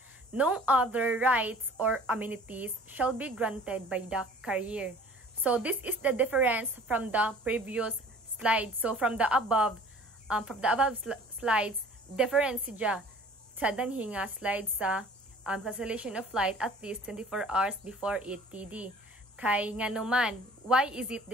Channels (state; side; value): normal; both; correlation 0.49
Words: no other rights or amenities shall be granted by the carrier. So this is the difference from the previous slide. So from the above slides, difference siya sa danhi nga slide sa cancellation of flight at least 24 hours before it TD. Kay nga naman, why is it